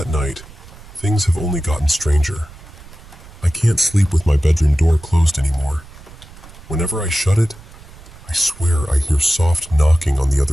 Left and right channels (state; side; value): noise; right; rumble, 20 dB below the sound